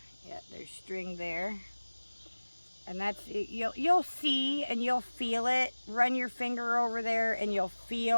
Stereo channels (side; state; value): both; inverted; correlation -1.00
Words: yeah, there's string there. And that's, you'll see and you'll feel it. Run your finger over there and you'll